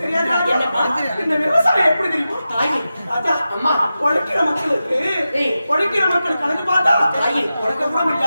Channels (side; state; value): both; inverted; correlation -0.92